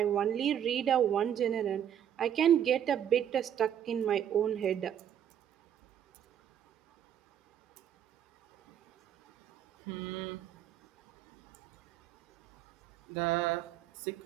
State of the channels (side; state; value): left; quieter; 9.8 dB